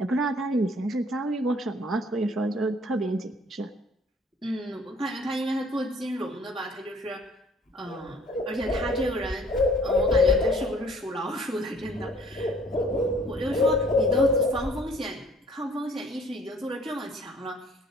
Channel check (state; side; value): normal; both; correlation 0.56